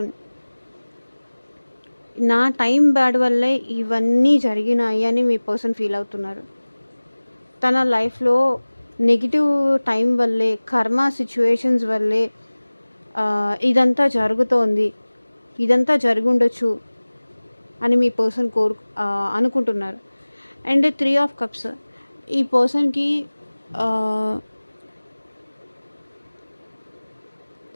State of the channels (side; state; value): both; inverted; correlation -1.00